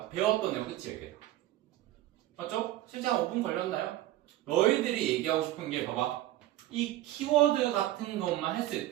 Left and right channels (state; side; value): quieter; left; 14.9 dB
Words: 배웠던 내용 끝이에요 이게. 맞죠? 실제 한 5분 걸렸나요? 너희들이 얘기하고 싶은 게 봐봐 이 키워드 같은 것만 했을